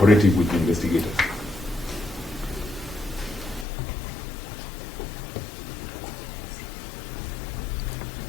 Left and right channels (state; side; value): drops out; right; at 3.7 s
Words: with the investigators.